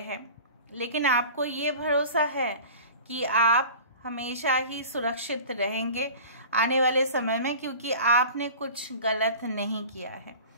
लेकिन आपको ये भरोसा है कि आप हमेशा ही सुरक्षित रहेंगे आने वाले समय में, क्योंकि आपने कुछ गलत नहीं किया है।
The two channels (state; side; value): inverted; both; correlation -0.38